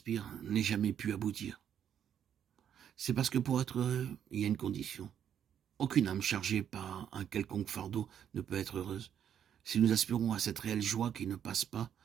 n'ait jamais pu aboutir? C'est parce que pour être heureux, il y a une condition. Aucune âme chargée par un quelconque fardeau ne peut être heureuse. Si nous aspirons à cette réelle joie qui ne passe pas,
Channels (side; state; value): left; quieter; 9.1 dB